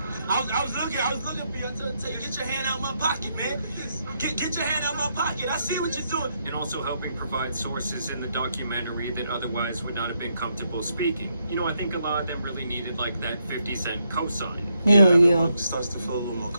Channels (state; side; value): inverted; both; correlation -0.78